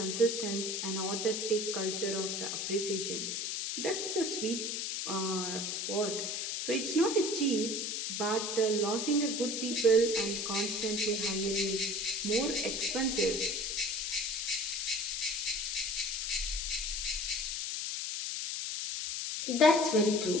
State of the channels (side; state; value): left; noise; hiss, 2 dB below the sound